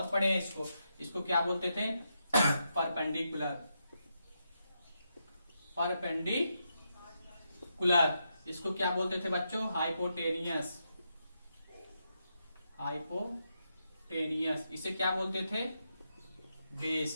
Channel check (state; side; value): inverted; both; correlation -0.83